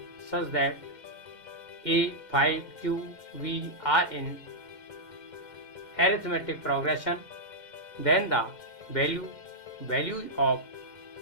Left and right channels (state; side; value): late; right; 2.1 ms